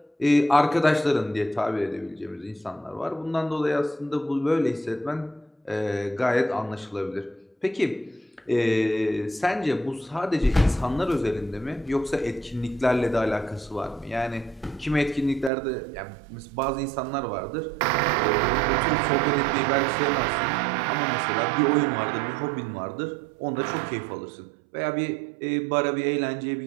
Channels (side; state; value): left; drops out; at 15.5 s